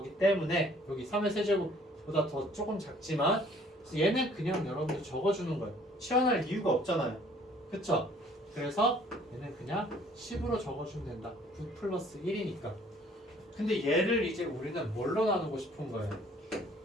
때문에 여기 3의 세제곱보다 더 조금 작지만 얘는 그냥 여러분들 적어주는 거예요. 치환할 이유가 없잖아요. 그쵸? 그래서 얘는 그냥 10으로 적어주면 된다. 9 플러스 1이니까. 근데 얘를 이제 우리는 뭘로 나누고 싶은 거예요?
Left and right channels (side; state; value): both; normal; correlation 0.57